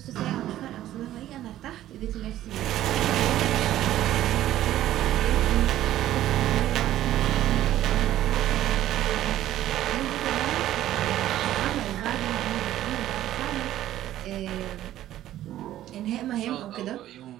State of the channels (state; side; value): quieter; left; 13.3 dB